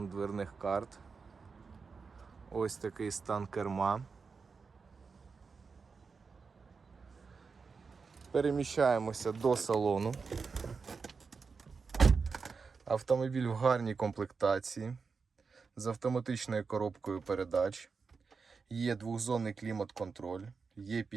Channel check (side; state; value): left; quieter; 5.0 dB